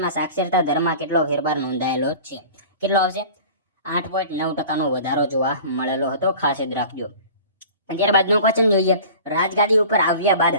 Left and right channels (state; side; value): inverted; both; correlation -0.41